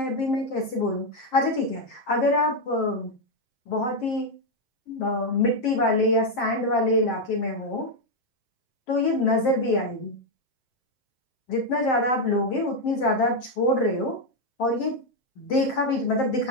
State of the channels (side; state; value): right; late; 7.7 ms